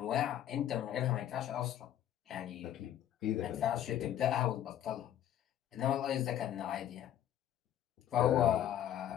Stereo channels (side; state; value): right; quieter; 11.2 dB